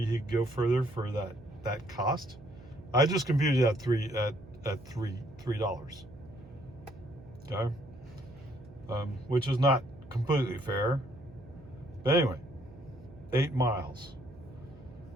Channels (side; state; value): right; noise; hum, 20 dB below the sound